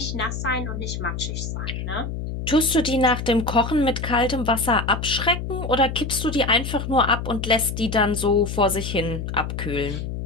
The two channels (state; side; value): noise; left; hum, 5 dB below the sound